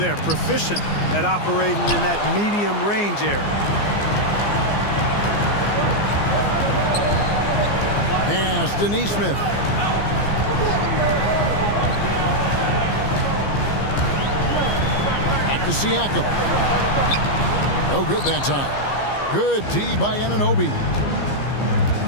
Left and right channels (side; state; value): right; late; 15 ms